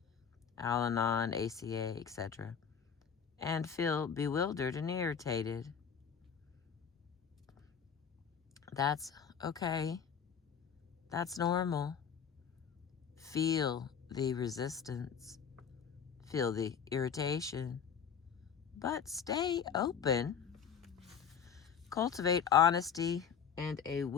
Al-Anon, ACA, etc., and feel bewildered and irritated. That's okay. That's normal. Feel the resistance. Feel the irritation. But stay open. Cultivate honesty and a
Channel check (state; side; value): quieter; right; 7.3 dB